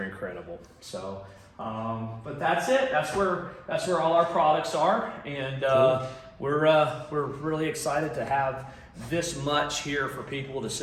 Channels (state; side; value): identical; both; correlation 1.00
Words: incredible. So, but that's it. That's where all our products are, and Cool. we're really excited to have this much here for people to